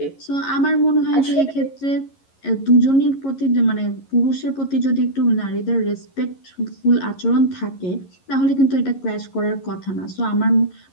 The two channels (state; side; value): late; right; 11 ms